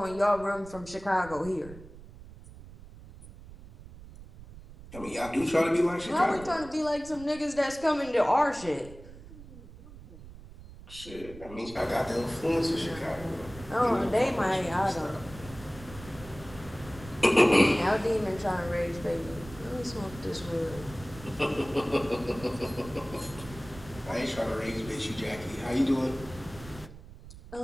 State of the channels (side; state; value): right; noise; rumble, 17 dB below the sound